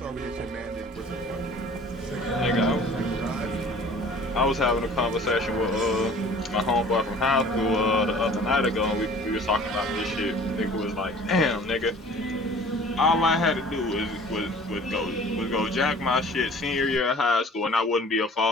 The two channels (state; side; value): normal; both; correlation 0.48